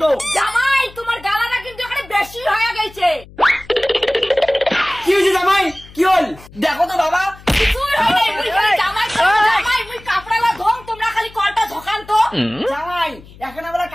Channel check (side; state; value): left; noise; hum, 21 dB below the sound